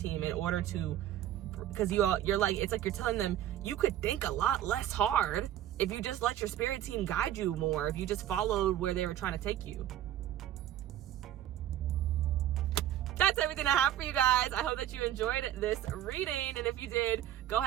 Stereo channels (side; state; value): left; quieter; 12.0 dB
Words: in order to, because you're like, it's like you're telling them you could think a lot less hard if you just let your spirit team guide you more, if you just followed where they were trying to take you. That's everything I have for you guys. I hope that you enjoyed this reading, and if you did, go